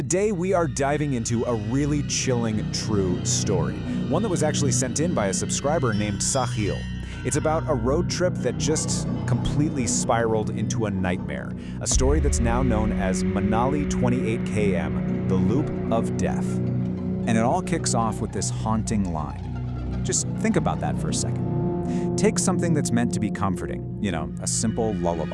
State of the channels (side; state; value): both; identical; correlation 1.00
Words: we are diving into a really chilling true story, one that was actually sent in by a subscriber named Sahil. It's about a road trip that just completely spiraled into a nightmare, a story that's now known as Manali 28 km, the Loop of Death. And it all kicks off with this haunting line. Just think about that for a second. Take something that's meant to be comforting, a simple